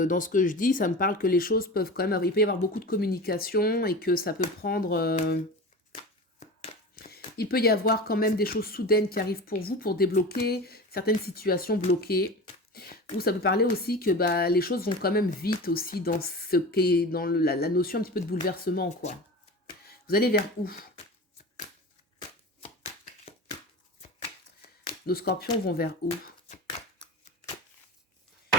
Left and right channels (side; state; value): both; normal; correlation 0.31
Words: ce que je dis, ça me parle que les choses peuvent quand même... Il peut y avoir beaucoup de communication et que ça peut prendre... il peut y avoir quand même des choses soudaines qui arrivent pour vous pour débloquer certaines situations bloquées. Ou ça peut parler aussi que bah, les choses vont quand même vite aussi dans ce qu'est dans la notion un petit peu de bouleversement, quoi. Vous allez vers où? Nos scorpions vont vers où?